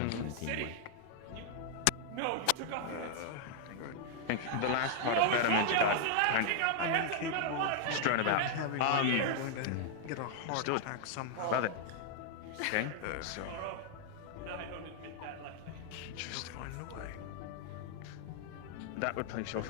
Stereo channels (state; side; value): different; both; correlation -0.01